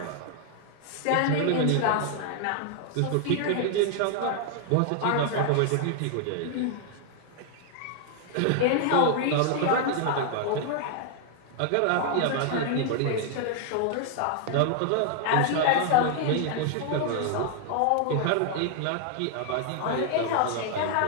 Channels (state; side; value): different; both; correlation 0.00